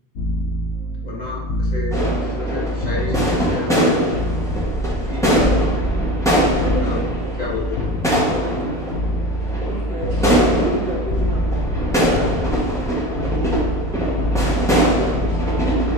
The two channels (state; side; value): normal; both; correlation 0.35